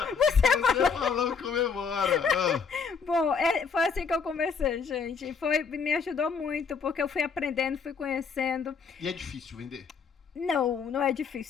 Você falou comemora! Ah. Bom, foi assim que eu comecei, gente. Me ajudou muito, porque eu fui aprendendo, fui conhecendo. E é difícil vender? Não é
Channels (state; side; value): quieter; right; 5.8 dB